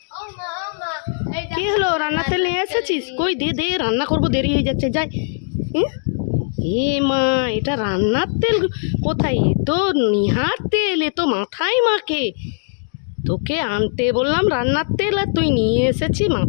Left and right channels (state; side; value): silent; right; digital silence